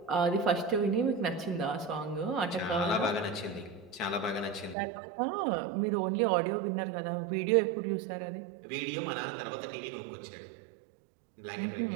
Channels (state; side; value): drops out; left; at 4.8 s